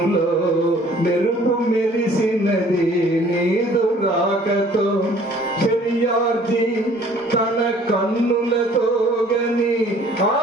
మెరుపు మెరిసినది నీదు రాగతో శర్యార్జి తన కన్నులతో గని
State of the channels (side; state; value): both; normal; correlation 0.55